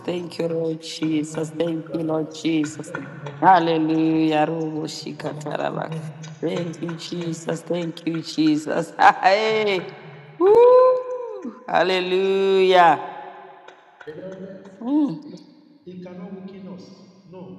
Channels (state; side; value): identical; both; correlation 1.00